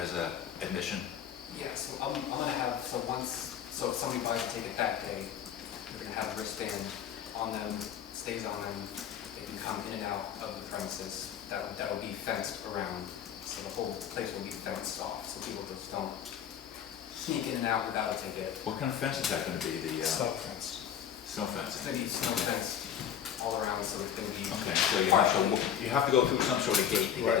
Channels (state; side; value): quieter; right; 9.1 dB